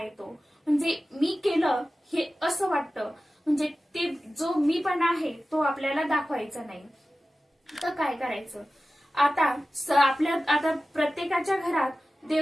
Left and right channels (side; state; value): both; normal; correlation 0.95